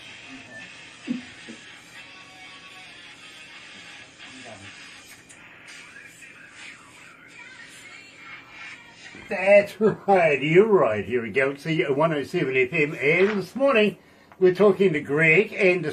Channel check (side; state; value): both; identical; correlation 1.00